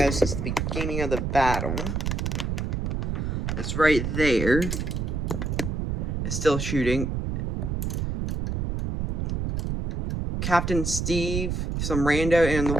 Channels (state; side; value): noise; right; rumble, 1 dB below the sound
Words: since the beginning of the battle, it's right there, is still shooting. Captain Steve, some rando, and the